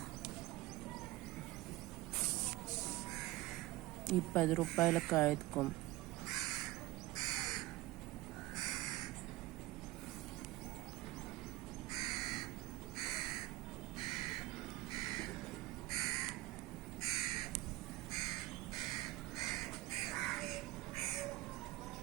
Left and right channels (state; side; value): quieter; left; 18.5 dB